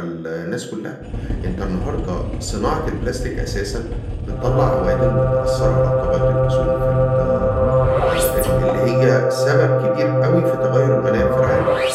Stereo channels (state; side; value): identical; both; correlation 1.00